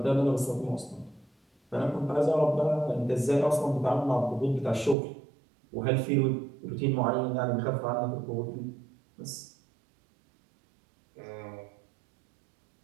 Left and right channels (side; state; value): left; drops out; at 5.0 s